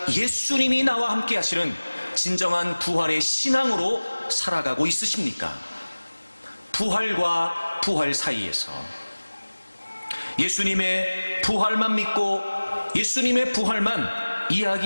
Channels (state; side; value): inverted; both; correlation -1.00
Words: 예수님이 나와 함께 하시는 진정한 부활의 신앙으로 살아가고 있으십니까? 부활과 부활 사이에서 예수님의 부활만 믿고 예수님의 부활만